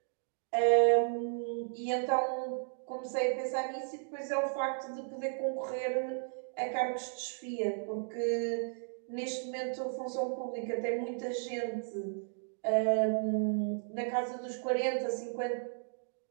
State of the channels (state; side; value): silent; left; digital silence